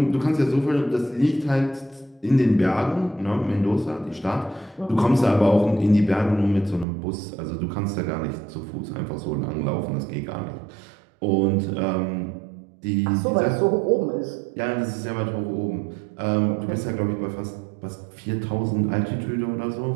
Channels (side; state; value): left; drops out; at 6.9 s